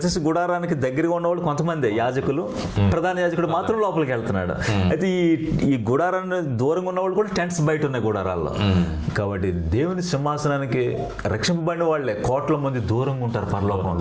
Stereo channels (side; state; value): both; identical; correlation 1.00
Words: గుడారానికి దగ్గరగా ఉన్నవాళ్ళు కొంతమంది యాజకులు, ప్రధాన యాజకుడు మాత్రం లోపలికి వెళ్తున్నాడు. అయితే ఈ గుడారాన్ని దూరంగా ఉన్నవాళ్ళు కూడా టెంట్స్ బయట ఉన్నాయి గుడారాల్లో. కాబట్టి దేవుని సింహాసనానికి రక్షింపబడిన వాళ్ళే కోట్ల మంది దూరంగా ఉంటారు,